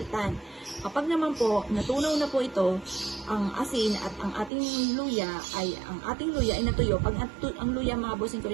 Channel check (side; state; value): left; drops out; at 4.5 s